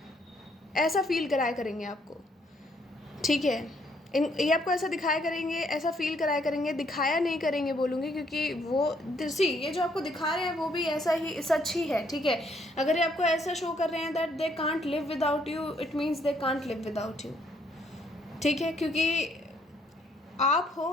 ऐसा फील कराया करेंगे आपको, ठीक है। ये आपको ऐसा दिखाया करेंगे, ऐसा फील कराया करेंगे, दिखाया नहीं करेंगे बोलूँगी, क्योंकि वो ये जो आपको दिखा रहे हैं वो भी ऐसा ही सच ही है, ठीक है। अगर ये आपको ऐसा शो कर रहे हैं that they can't live without you, it means they can't live without you, ठीक है। क्योंकि आप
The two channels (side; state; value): both; normal; correlation 0.69